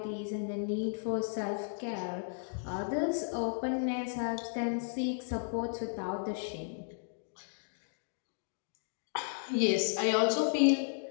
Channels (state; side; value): silent; right; digital silence